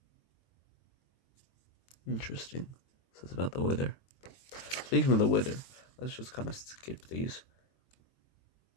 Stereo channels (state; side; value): late; right; 23 ms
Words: Interesting. This is about the wither. Speaking of the wither, let's just kind of skip these.